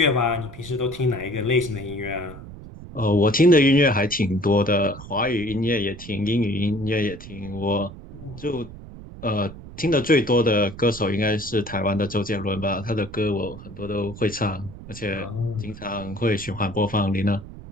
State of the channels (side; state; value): right; noise; rumble, 14 dB below the sound